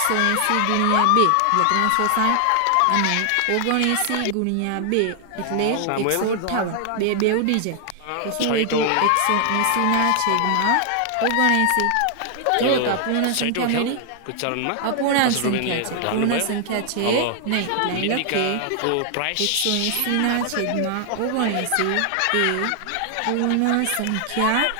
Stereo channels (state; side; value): different; both; correlation 0.00